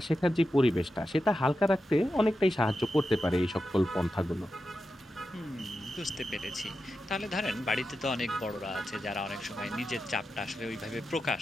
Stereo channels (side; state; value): both; normal; correlation 0.90